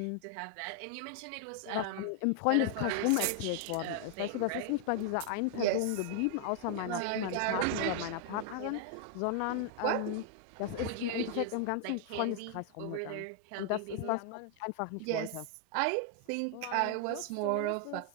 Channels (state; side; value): different; both; correlation 0.00